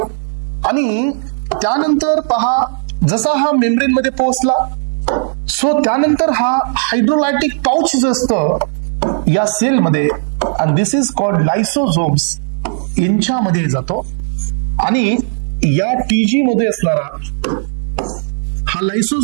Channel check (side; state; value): left; silent; digital silence